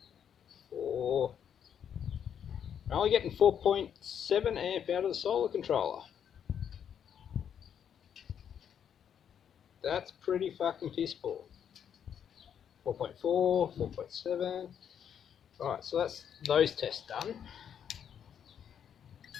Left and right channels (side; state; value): right; quieter; 8.5 dB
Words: We're only getting 4.7 amp out of the solar controller. That's pretty fucking piss poor. 4.4, 4.7. Alright, so that's those tests done.